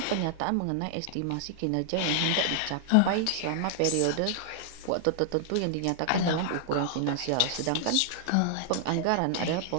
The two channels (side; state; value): both; different; correlation -0.01